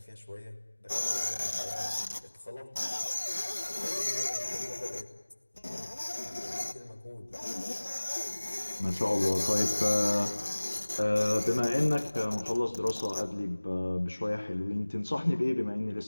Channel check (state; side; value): inverted; both; correlation -1.00